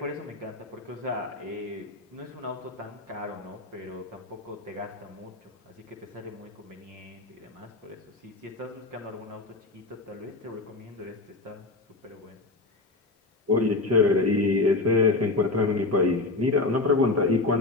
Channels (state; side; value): quieter; right; 3.2 dB